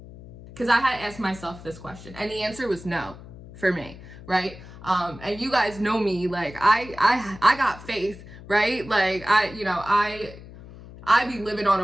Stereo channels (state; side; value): noise; left; hum, 17 dB below the sound